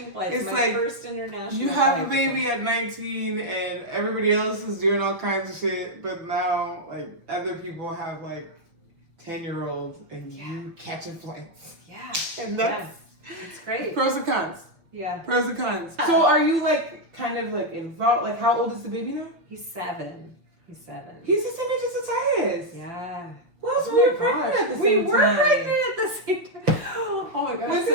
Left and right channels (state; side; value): late; left; 6.0 ms